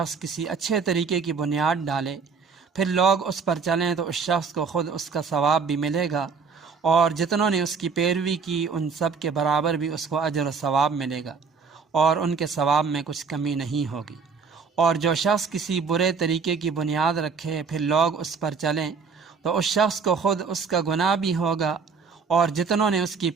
کسی اچھے طریقے کی بنیاد ڈالے پھر لوگ اس پر چلیں تو اس شخص کو خود اس کا ثواب بھی ملے گا، اور جتنوں نے اس کی پیروی کی ان سب کے برابر بھی اس کو اجر و ثواب ملے گا، اور ان کے ثواب میں کچھ کمی نہیں ہوگی۔ اور جو شخص کسی برے طریقے کی بنیاد رکھے پھر لوگ اس پر چلیں تو اس شخص کو خود اس کا گناہ بھی ہوگا، اور جتنوں نے اس کی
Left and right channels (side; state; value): left; quieter; 5.4 dB